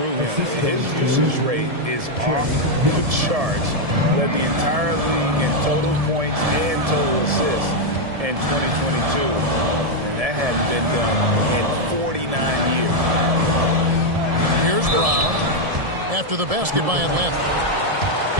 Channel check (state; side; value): late; left; 1.7 ms